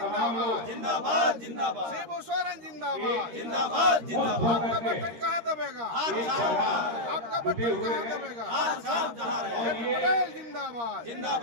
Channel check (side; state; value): left; late; 13 ms